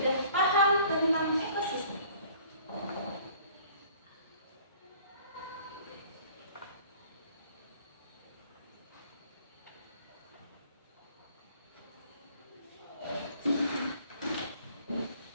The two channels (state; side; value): inverted; both; correlation -0.54